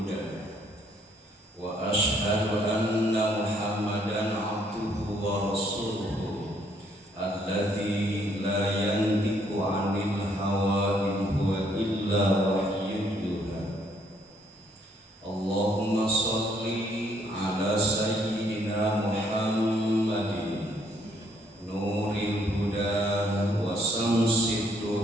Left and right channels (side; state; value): both; normal; correlation 0.67